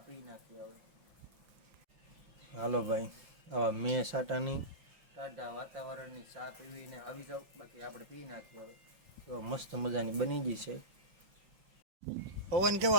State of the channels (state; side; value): late; left; 5.8 ms